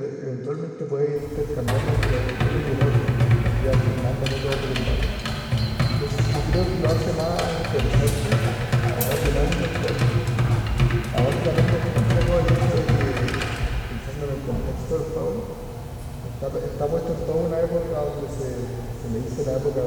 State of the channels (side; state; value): both; identical; correlation 1.00